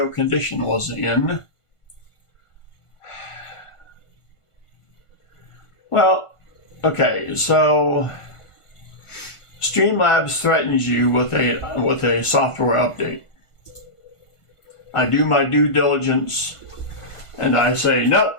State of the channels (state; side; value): late; right; 1.5 ms